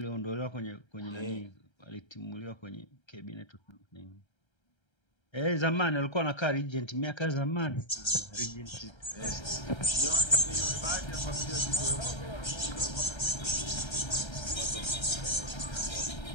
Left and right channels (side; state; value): right; late; 1.3 ms